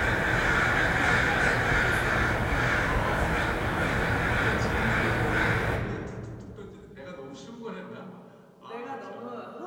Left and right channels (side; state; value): both; identical; correlation 1.00